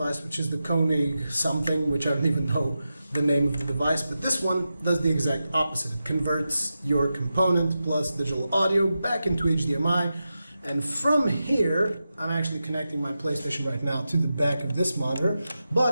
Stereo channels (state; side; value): inverted; both; correlation -0.91